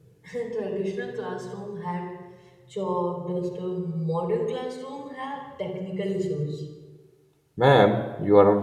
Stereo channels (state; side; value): identical; both; correlation 1.00